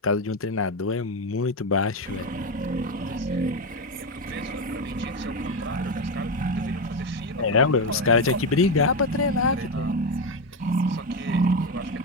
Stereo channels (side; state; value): both; normal; correlation 0.12